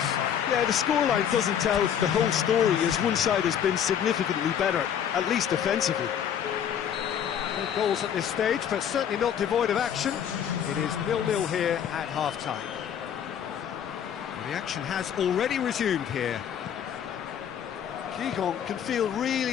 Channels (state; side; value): quieter; right; 8.9 dB